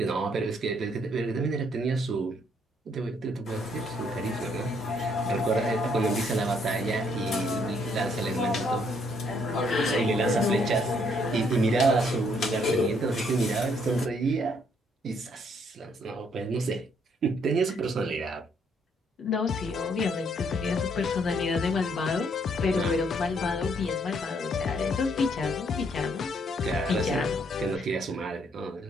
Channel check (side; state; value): both; normal; correlation 0.69